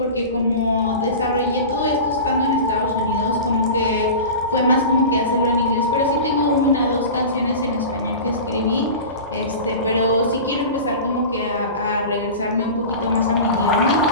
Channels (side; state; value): both; inverted; correlation -0.32